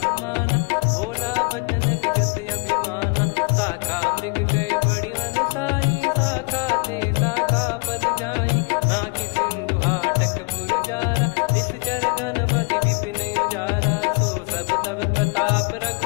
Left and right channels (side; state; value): right; quieter; 32.6 dB